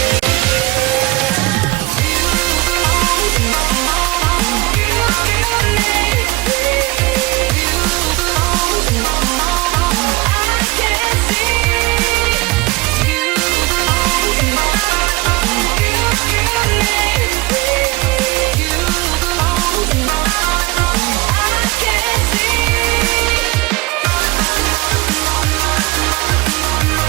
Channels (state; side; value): quieter; left; 21.6 dB